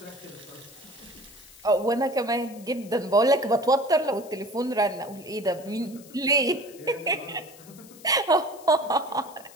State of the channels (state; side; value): noise; left; hiss, 21 dB below the sound